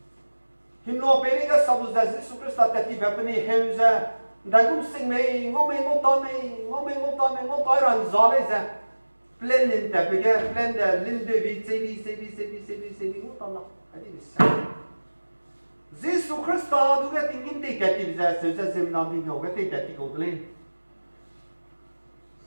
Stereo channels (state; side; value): inverted; both; correlation -1.00